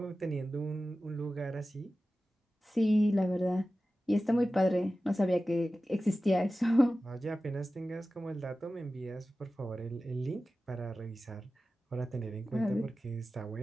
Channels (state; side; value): normal; both; correlation 0.95